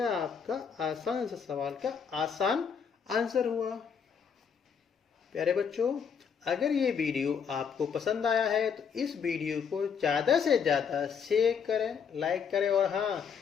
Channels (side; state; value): right; quieter; 6.8 dB